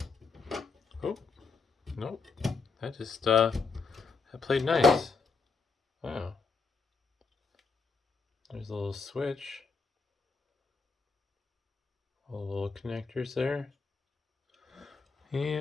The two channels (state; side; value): quieter; right; 4.6 dB